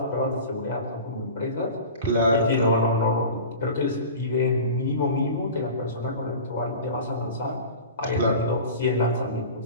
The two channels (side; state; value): both; inverted; correlation -0.37